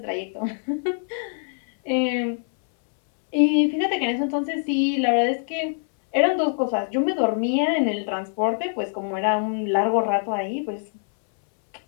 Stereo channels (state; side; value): silent; right; 63 dB below the other